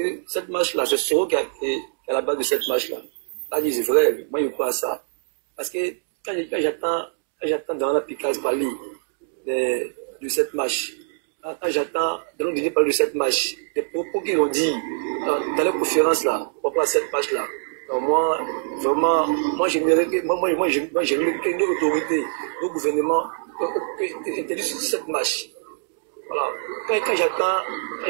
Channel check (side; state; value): left; silent; digital silence